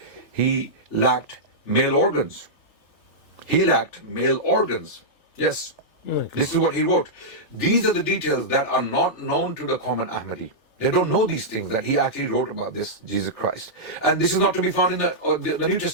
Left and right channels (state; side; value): late; right; 3.4 ms